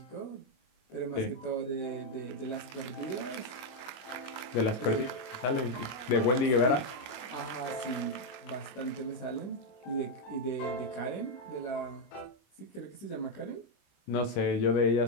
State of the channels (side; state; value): right; late; 22 ms